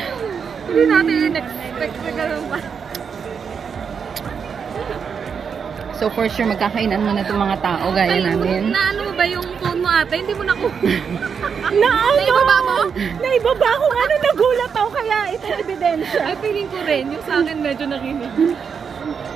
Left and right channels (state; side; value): quieter; left; 6.5 dB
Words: Hindi natin in-expect na gano'n pa. So, for sure, magkakainan mo na itong mga tao gaya namin. Naano mo ba yung phone mo ate? Hindi mo na ko. Naibaba mo? Naibaba ko nga nung nagulat ako kaya ito ebidensya. Ay, feeling ko rin. Yung sa akin medyo nakinig.